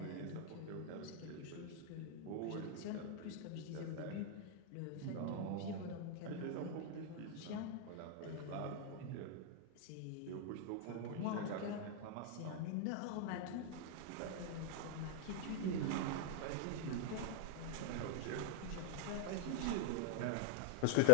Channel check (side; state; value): both; different; correlation 0.00